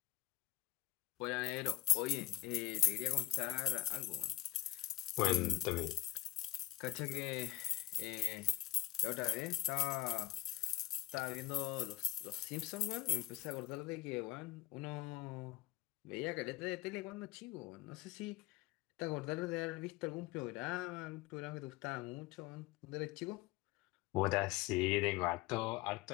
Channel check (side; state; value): right; quieter; 16.1 dB